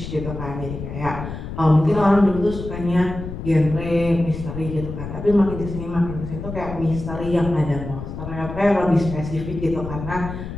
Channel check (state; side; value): noise; left; rumble, 8 dB below the sound